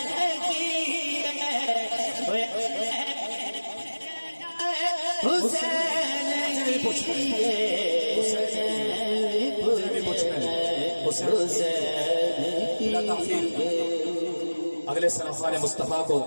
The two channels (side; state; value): both; inverted; correlation -1.00